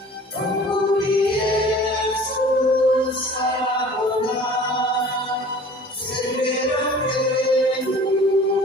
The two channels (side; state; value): both; normal; correlation 0.46